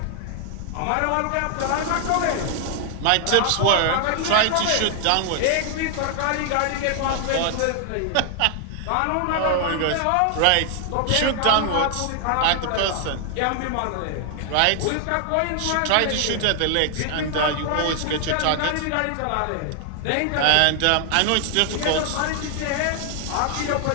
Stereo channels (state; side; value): different; both; correlation 0.00